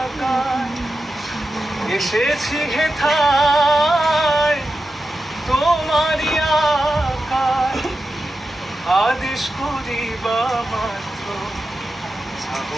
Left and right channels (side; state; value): both; normal; correlation 0.91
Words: আকায়, এসেছি হেথায় তোমারই আকায়, আদেশ করিবা মাত্র যাব